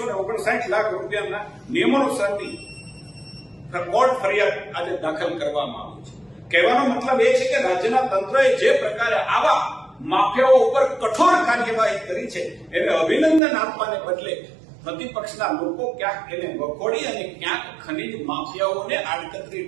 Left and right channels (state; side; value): drops out; left; at 13.4 s